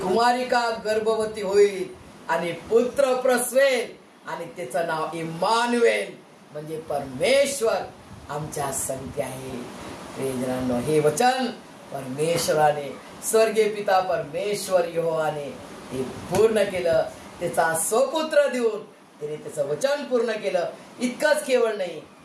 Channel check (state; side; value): identical; both; correlation 1.00